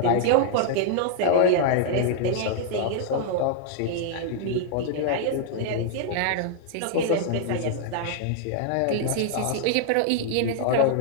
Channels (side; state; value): both; different; correlation -0.01